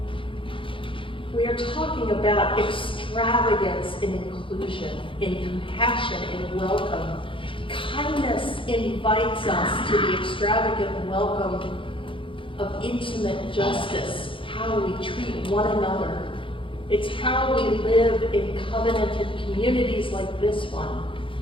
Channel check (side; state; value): right; late; 0.25 ms